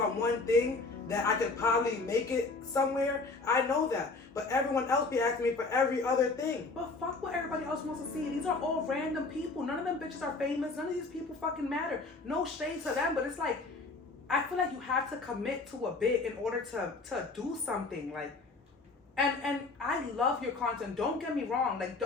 one thing, that I could probably make it somewhere? I know that. But everyone else be asking me for every other thing. But fuck what everybody else wants to see. These are all random people. None of them bitches are famous. None of these people fucking matter. No shade to them, but it's like, I feel like you have to commit to a bit in order to do something. Like, and I love your content. Don't get me wrong. Like,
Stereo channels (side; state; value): right; quieter; 3.7 dB